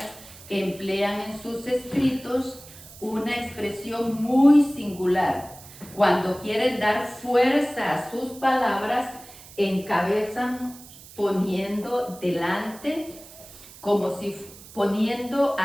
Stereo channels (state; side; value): noise; right; hiss, 19 dB below the sound